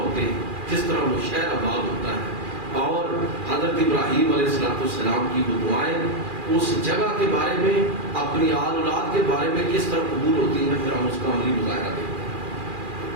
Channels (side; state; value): left; late; 2.4 ms